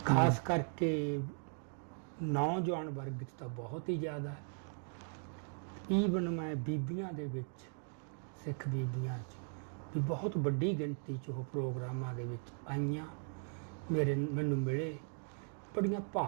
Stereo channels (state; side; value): silent; left; 52 dB below the other